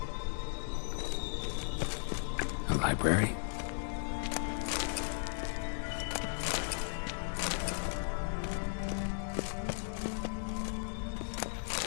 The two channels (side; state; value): right; silent; digital silence